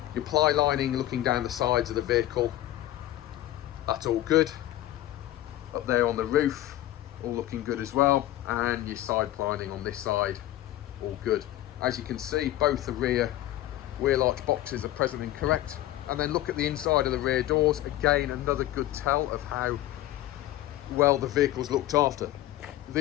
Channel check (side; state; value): right; quieter; 14.4 dB